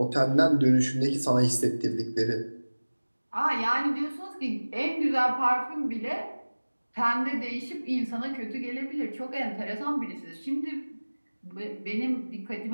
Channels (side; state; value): both; inverted; correlation -1.00